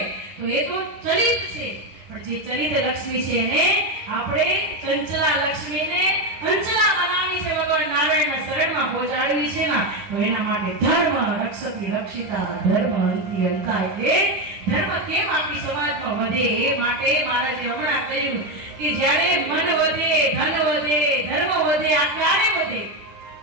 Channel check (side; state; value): left; late; 10 ms